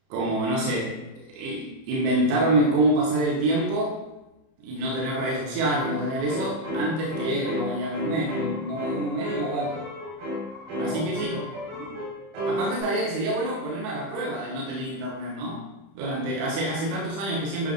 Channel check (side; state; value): left; late; 31 ms